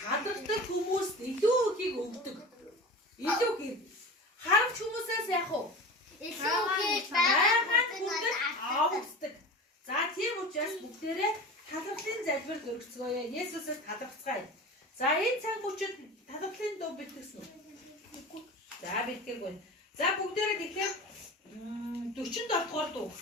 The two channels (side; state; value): both; normal; correlation 0.33